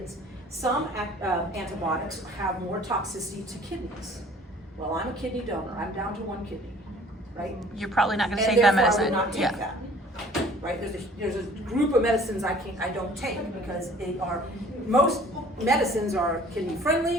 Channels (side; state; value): both; normal; correlation 0.51